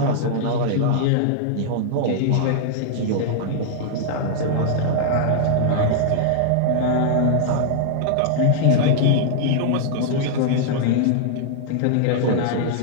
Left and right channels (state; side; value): different; both; correlation -0.01